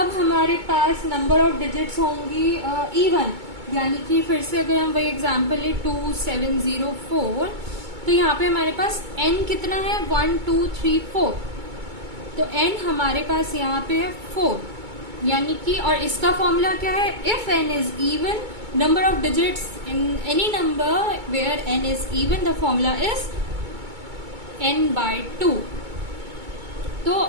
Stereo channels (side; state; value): left; late; 2.2 ms